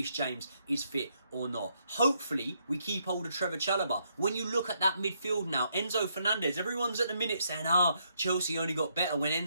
James is fit or not. Hopefully, we keep hold of Trevor Chalobah. When you look at that midfield now, Enzo Fernandez, everyone's at the minute saying, Chelsea only got better when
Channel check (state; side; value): inverted; both; correlation -0.75